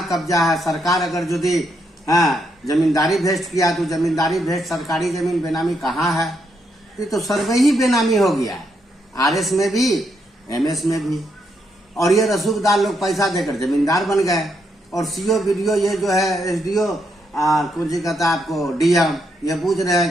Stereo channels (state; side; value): normal; both; correlation 0.78